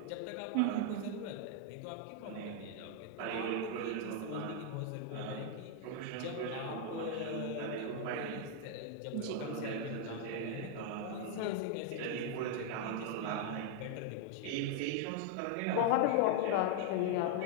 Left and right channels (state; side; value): different; both; correlation 0.00